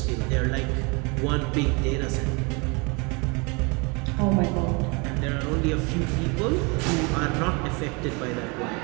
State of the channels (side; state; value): left; quieter; 29.9 dB